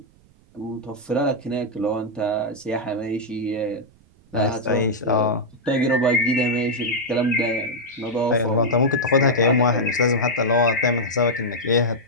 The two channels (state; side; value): noise; right; rumble, 30 dB below the sound